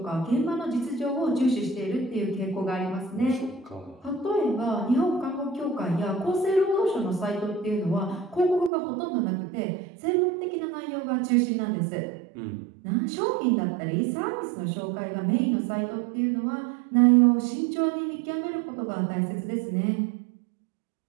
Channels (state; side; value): drops out; left; at 8.7 s